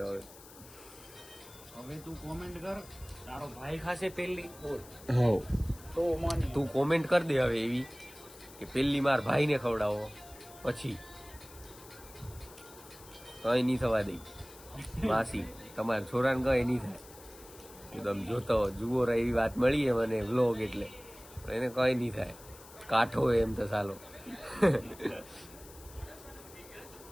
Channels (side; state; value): left; noise; hiss, 20 dB below the sound